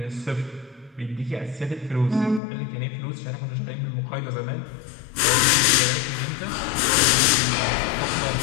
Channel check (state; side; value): drops out; right; at 2.4 s